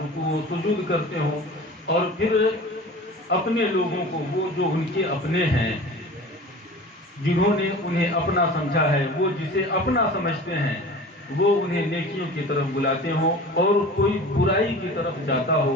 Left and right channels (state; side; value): normal; both; correlation 0.38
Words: و سجود کرتے ہوں، اور پھر اپنے لوگوں کو، وہ جو ان کے اپنے ہیں، جنہوں نے انہیں اپنا سمجھا ہے، وہ جسے اپنا سمجھتے ہیں، وہ انہیں نیکیوں کی طرف بلاتے ہوں، اور کوئی برائی کی طرف جاتا ہو